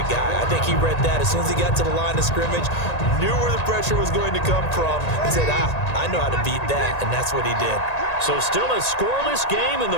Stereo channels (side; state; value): right; late; 1.9 ms